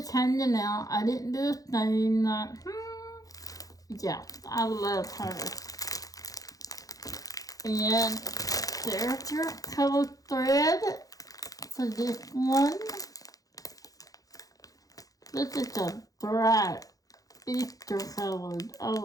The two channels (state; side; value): late; right; 0.17 ms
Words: hanging out. I didn't do a thing. Like, yeah, I love her. And there's your color thread for this one. This is a bright Easter colored.